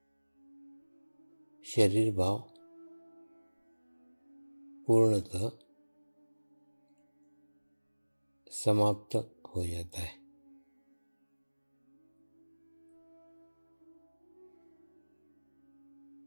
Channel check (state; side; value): inverted; both; correlation -1.00